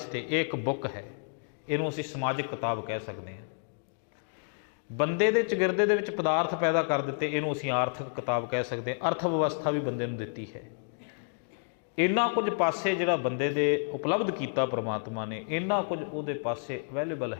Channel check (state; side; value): silent; right; digital silence